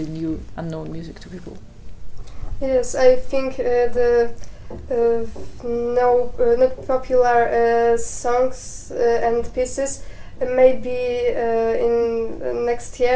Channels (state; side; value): identical; both; correlation 1.00